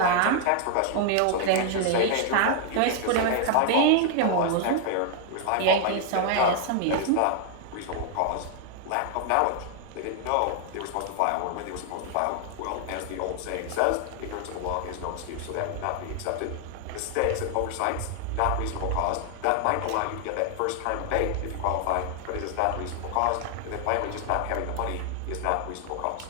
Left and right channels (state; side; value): different; both; correlation 0.00